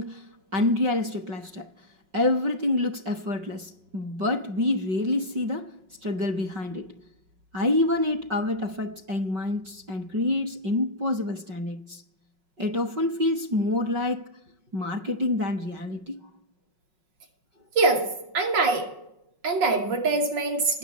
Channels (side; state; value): left; late; 5.4 ms